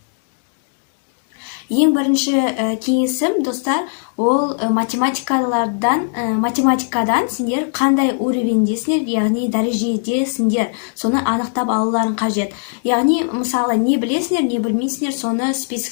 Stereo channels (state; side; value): silent; right; 67 dB below the other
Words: Ең бірінші кеңесім, достар, ол математикадан сендер қандай уровендесіңдер, яғни дәрежедесіңдер, соны анықтап алуларың қажет. Яғни, мысалы, не білесіңдер, не білмейсіңдер, соны